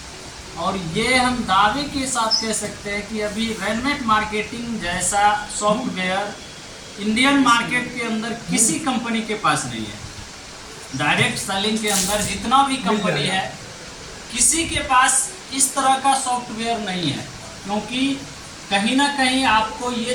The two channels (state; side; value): identical; both; correlation 1.00